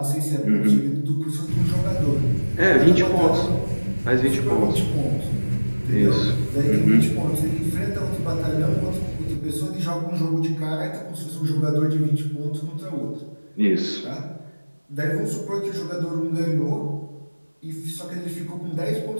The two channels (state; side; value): inverted; both; correlation -1.00